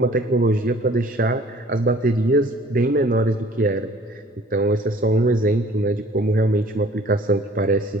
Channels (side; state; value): both; normal; correlation 0.52